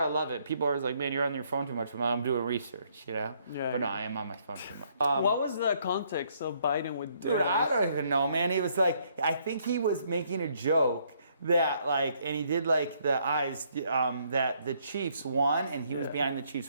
love it. People are always like, man, you're on your phone too much. Well, I'm doing research, you know. Yeah. But no, I am on my phone too much. What was the context of Biden with Dude, I don't even know, man. He was like, I think he was making a joke that like, and he did like the eyes that the Chiefs won, and he was Yeah. behind the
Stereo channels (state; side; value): inverted; both; correlation -0.68